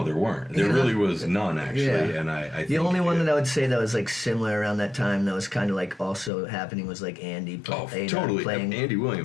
there weren't. There really was none actually, Yeah. and I The only one that I would say that was like similar around that time that was kind of like also happening was like Andy totally playing Andy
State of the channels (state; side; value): drops out; right; at 6.3 s